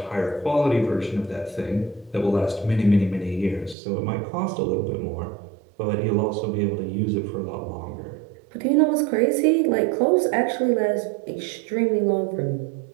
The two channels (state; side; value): drops out; left; at 3.8 s